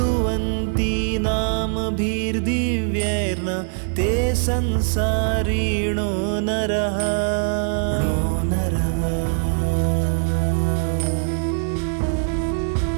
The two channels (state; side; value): silent; left; digital silence